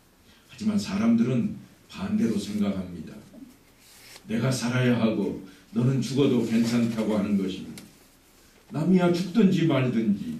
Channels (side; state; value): both; identical; correlation 1.00